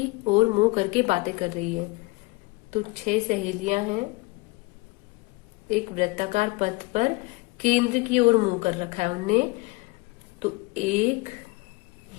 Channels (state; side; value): quieter; right; 24.5 dB